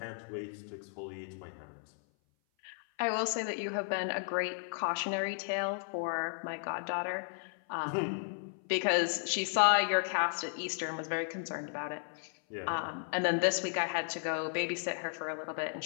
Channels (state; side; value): silent; right; 55 dB below the other